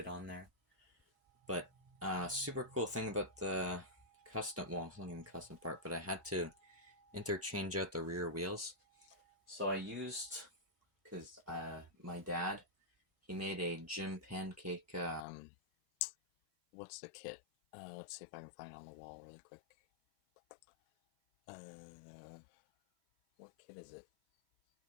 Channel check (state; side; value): drops out; right; at 15.2 s